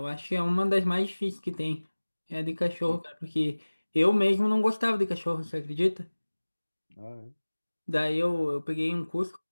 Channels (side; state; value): both; inverted; correlation -1.00